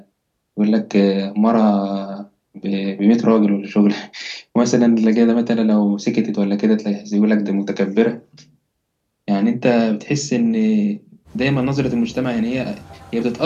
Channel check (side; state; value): both; identical; correlation 1.00